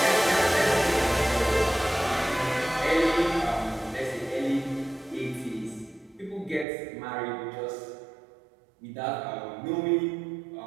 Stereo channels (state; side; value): drops out; left; at 6.7 s